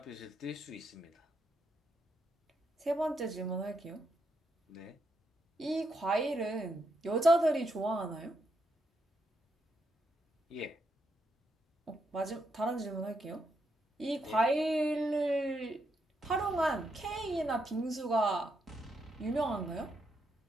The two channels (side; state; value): both; normal; correlation 0.80